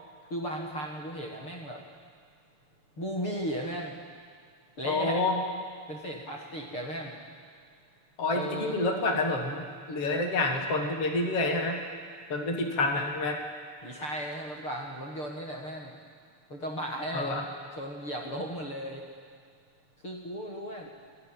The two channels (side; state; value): right; late; 6.8 ms